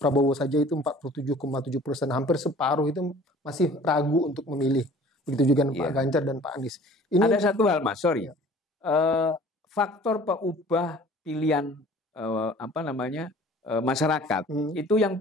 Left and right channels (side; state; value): both; normal; correlation 0.49